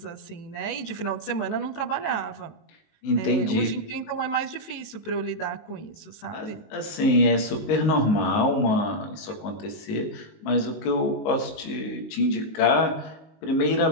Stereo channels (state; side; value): late; right; 19 ms